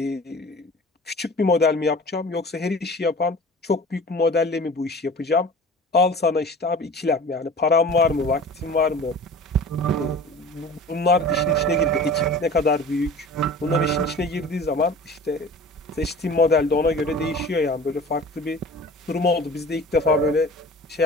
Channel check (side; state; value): both; normal; correlation 0.41